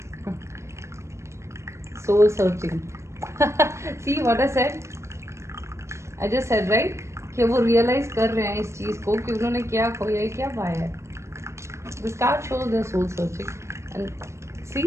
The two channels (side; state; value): left; late; 0.13 ms